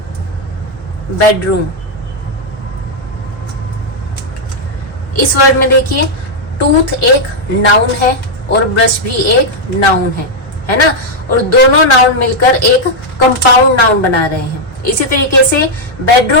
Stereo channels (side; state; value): both; normal; correlation -0.02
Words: बेडरूम। इस वर्ड में देखिए, टूथ एक नाउन है और ब्रश भी एक नाउन है ना, और दोनों नाउन मिलकर एक कंपाउंड नाउन बना रहे हैं। इसी तरीके से